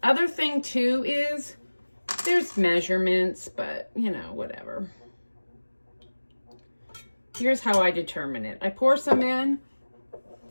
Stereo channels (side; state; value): both; inverted; correlation -1.00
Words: Other thing too is there's measurements, but you know, whatever. Here's how I determine it. I pour some in.